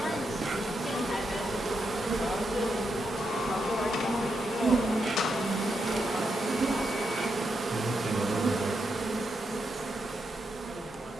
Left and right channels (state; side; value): normal; both; correlation 0.83